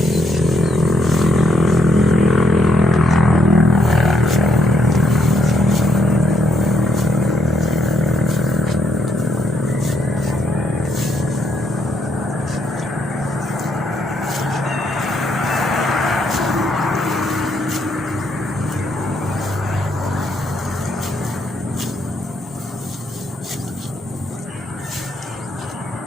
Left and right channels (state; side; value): normal; both; correlation 0.74